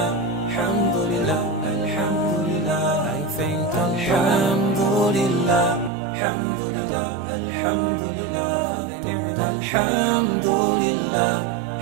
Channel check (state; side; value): drops out; left; at 5.9 s